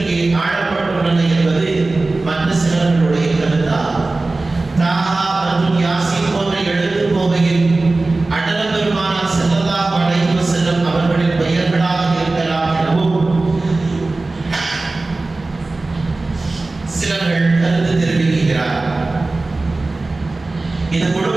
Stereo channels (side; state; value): left; quieter; 3.2 dB